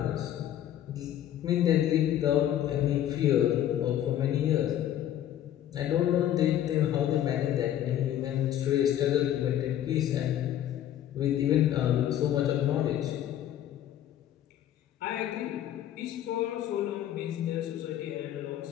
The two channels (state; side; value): quieter; right; 11.4 dB